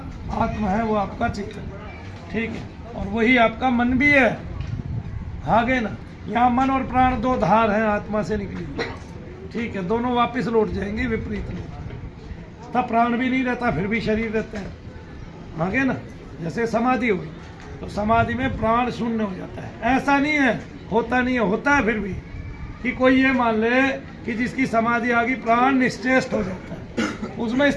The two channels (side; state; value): both; identical; correlation 1.00